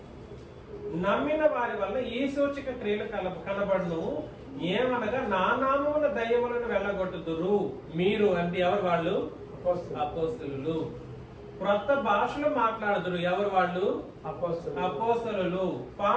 నమ్మిన వారి వల్ల ఈ సూచక క్రియలు కనబడును. ఏమనగా నా నామమున దయ్యములను వెళ్ళగొట్టుదురు. మీరు అంటే ఎవరు? వాళ్ళు అపోస్తలులు. క్రొత్త భాషలు మాట్లాడుదురు. ఎవరు వాళ్ళు? అపోస్తలులు.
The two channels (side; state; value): both; identical; correlation 1.00